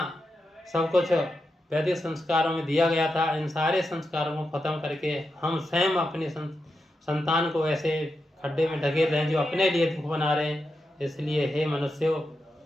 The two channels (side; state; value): both; normal; correlation 0.87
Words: सब कुछ वैदिक संस्कारों में दिया गया था, इन सारे संस्कारों को खत्म करके हम स्वयं अपनी संतान को ऐसे खड्डे में ढकेल रहे हैं जो अपने लिए दुख बना रहे हैं। इसलिए हे मनुष्यों,